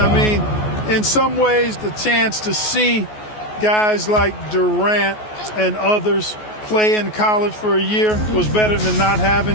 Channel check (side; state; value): right; late; 14 ms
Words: mean, in some ways, the chance to see guys like Durant and others play in college for a year was better than not